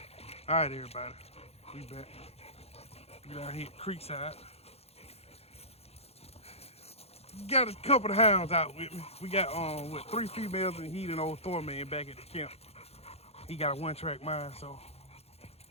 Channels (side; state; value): right; late; 0.30 ms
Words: All right, everybody, we back. We down here at Creekside. Got a couple of hounds out with me. We got 3 females and he and old Thorman back at the camp. He got a 1-track mind, so